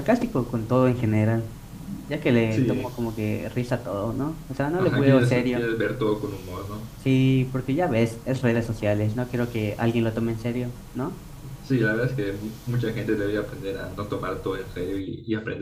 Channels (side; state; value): both; identical; correlation 1.00